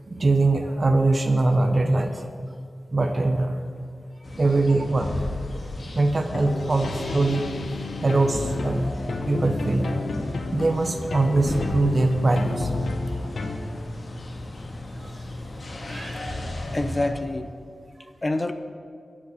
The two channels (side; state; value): both; normal; correlation 0.94